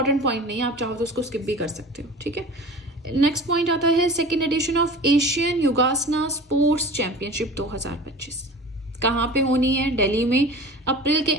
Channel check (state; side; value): normal; both; correlation 0.38